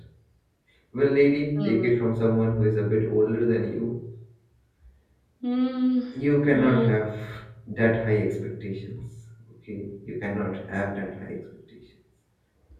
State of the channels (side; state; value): both; identical; correlation 1.00